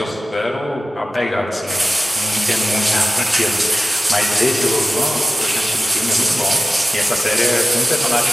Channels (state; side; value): normal; both; correlation 0.95